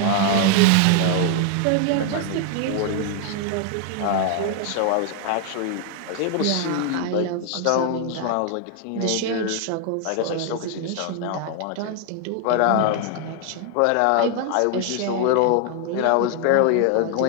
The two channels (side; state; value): both; different; correlation 0.00